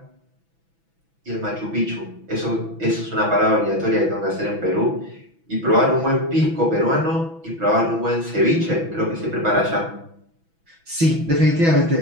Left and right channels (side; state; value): left; late; 6.1 ms